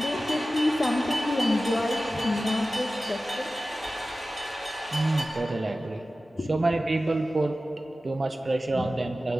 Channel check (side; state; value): both; normal; correlation 0.95